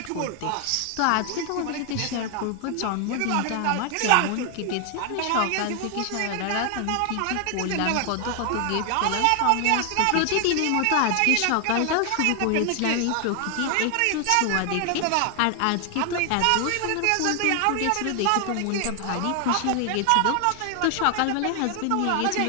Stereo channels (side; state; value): both; different; correlation 0.00